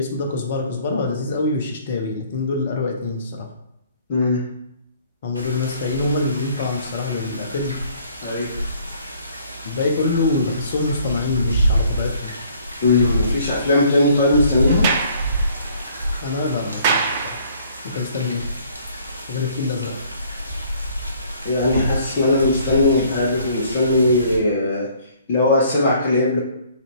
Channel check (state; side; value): inverted; both; correlation -0.59